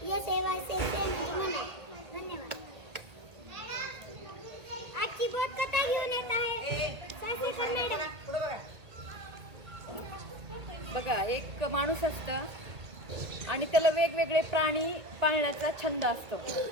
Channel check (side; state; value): left; late; 1.8 ms